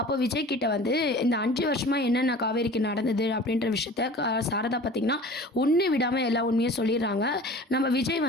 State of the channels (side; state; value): both; normal; correlation 0.42